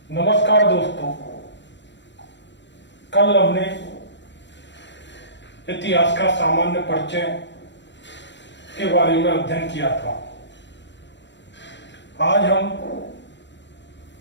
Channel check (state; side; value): late; right; 0.52 ms